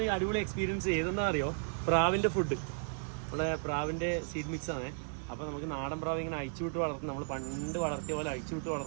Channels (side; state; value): left; silent; digital silence